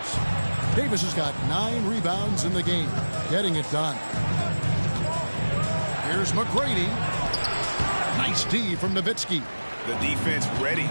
Davis has got 9 rebounds in the game, getting it done. Here's McGrady. Nice D from Nowitzki. The defense ready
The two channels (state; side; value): inverted; both; correlation -1.00